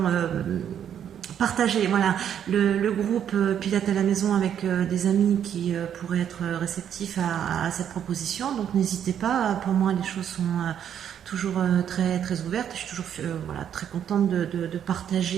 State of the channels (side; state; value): left; quieter; 9.2 dB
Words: partager voilà, le groupe Pilates à la maison avec des amis qui pourraient être réceptifs à cette proposition. Donc n'hésitez pas, pour moi les choses sont toujours très, très ouvertes. Je suis toujours voilà, très contente de